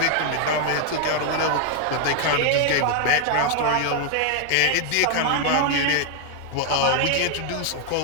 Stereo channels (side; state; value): both; different; correlation 0.00